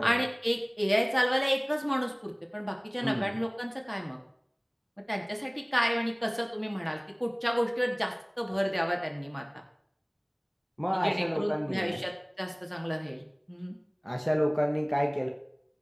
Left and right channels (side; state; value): both; identical; correlation 1.00